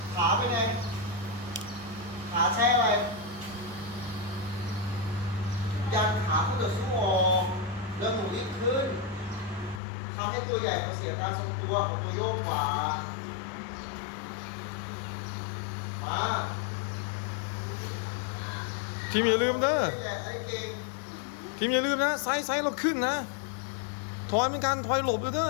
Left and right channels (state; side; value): drops out; right; at 9.8 s